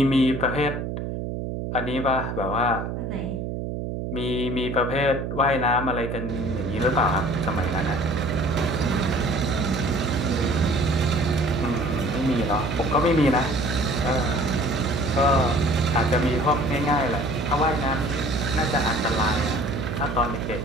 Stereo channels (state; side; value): noise; right; hum, 4 dB below the sound